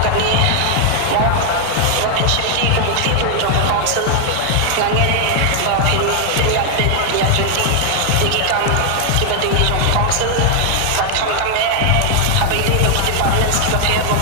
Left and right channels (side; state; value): both; different; correlation 0.00